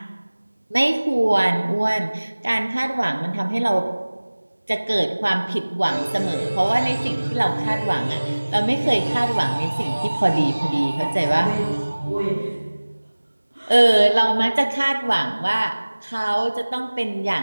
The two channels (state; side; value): inverted; both; correlation -1.00